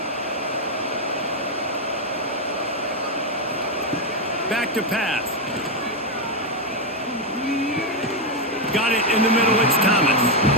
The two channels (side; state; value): both; normal; correlation 0.04